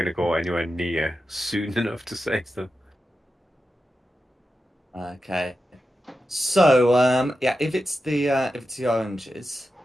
to go anywhere near soon enough to save them. Okay. So, if it's the oranges,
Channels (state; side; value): normal; both; correlation 0.91